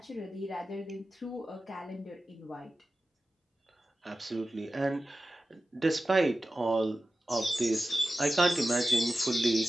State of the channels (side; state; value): both; normal; correlation 0.94